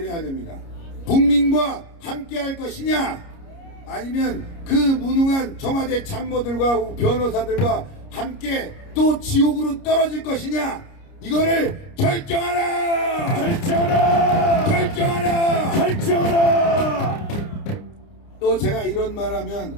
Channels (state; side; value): late; right; 29 ms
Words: 됩니다. 국민과 함께 할 것이냐, 아니면 그 무능한 청와대 참모들과 변호사들과 함께 또 지옥으로 떨어질 것이냐, 이거를 결정하라. 결정하라. 결정하라. 결정하라. 또 제가 이런 말하면